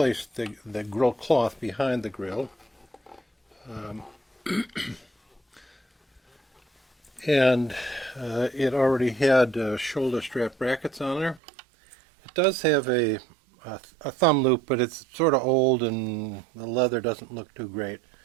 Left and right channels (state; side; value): drops out; left; at 11.4 s